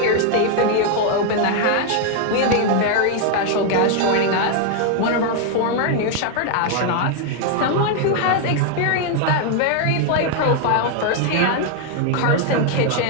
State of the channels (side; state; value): both; different; correlation 0.00